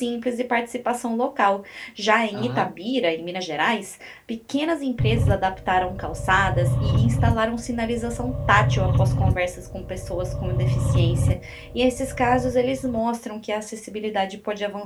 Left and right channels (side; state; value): both; identical; correlation 1.00